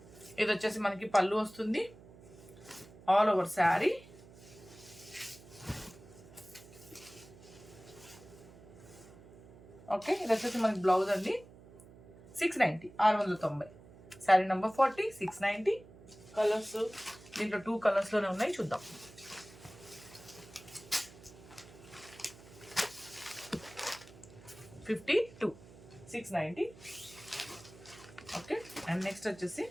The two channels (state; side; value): noise; right; hum, 20 dB below the sound